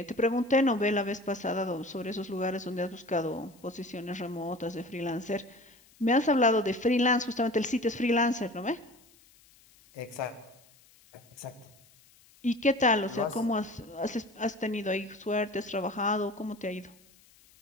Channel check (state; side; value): noise; left; hiss, 28 dB below the sound